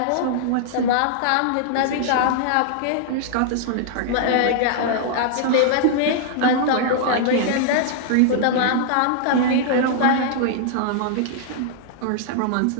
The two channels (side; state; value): both; different; correlation -0.01